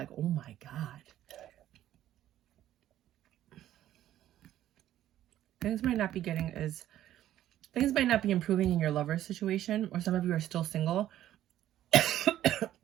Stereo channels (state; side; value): quieter; left; 12.6 dB